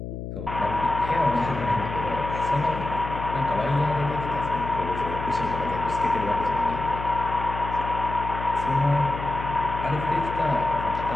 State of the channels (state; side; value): noise; left; hum, 7 dB below the sound